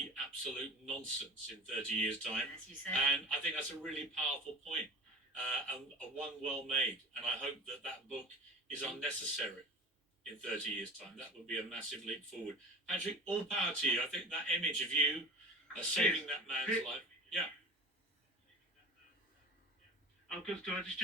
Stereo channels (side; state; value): both; normal; correlation 0.36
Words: absolute nonsense in 30 years' time. As you said. And I think that's a really powerful point, and one well made. And I hope that that book is unnecessary in 30 years' time. That would be a massive leap forward. Patrick, all power to you. I think that image of you saving that man's life. Yeah. Could I just